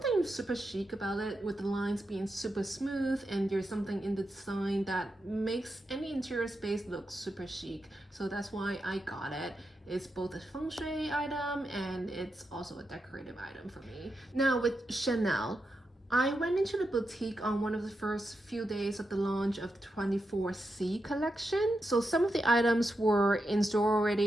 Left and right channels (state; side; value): normal; both; correlation 0.87